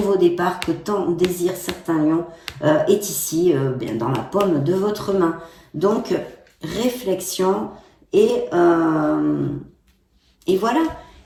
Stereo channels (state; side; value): identical; both; correlation 1.00